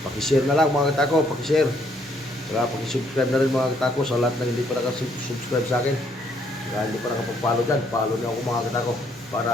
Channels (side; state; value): both; normal; correlation 0.68